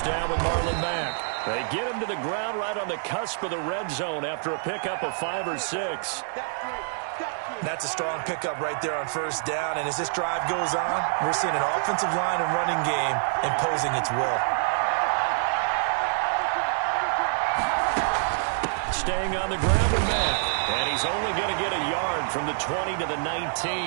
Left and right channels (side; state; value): left; silent; digital silence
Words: down with Marlon Mack. They get him to the ground right on the cusp of the red zone after a pickup of 5 or 6. That's a strong pickup right there on first down, and as this drive goes on, we're seeing an offensive line and running game imposing its will. Staying on the ground with Mack, and he's only going to get a yard from the 20 to the